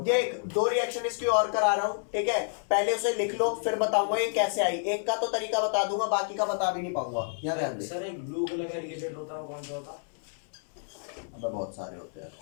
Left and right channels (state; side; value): silent; right; digital silence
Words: देख, 2 रिएक्शन इसकी और करा रहा हूँ। ठीक है, पहले उसे लिख लो, फिर बताऊंगा ये कैसे आई। एक का तो तरीका बता दूंगा, बाकी का बता भी नहीं पाऊंगा। यहाँ ध्यान दे। सर एक ब्लू कलर का रिएजेंट होता है, वो कौन सा होता है? अबे बहुत सारे होते हैं।